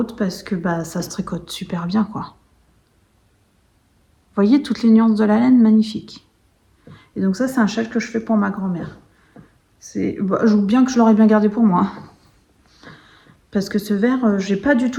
parce que bah, ça se tricote super bien, quoi. Vous voyez toutes les nuances de la laine, magnifique. Et donc ça, c'est un châle que je fais pour ma grand-mère. Bah, je vous bien que je l'aurais bien gardé pour moi. Parce que ce vert, j'ai pas du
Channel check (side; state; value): both; identical; correlation 1.00